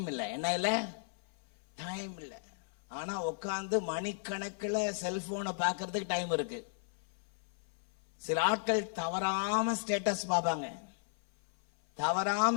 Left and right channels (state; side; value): silent; right; 54 dB below the other